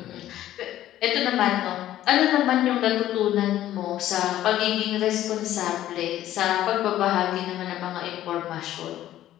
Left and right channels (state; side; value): quieter; right; 13.1 dB